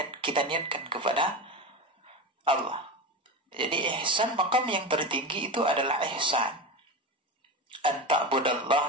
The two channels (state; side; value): normal; both; correlation 0.22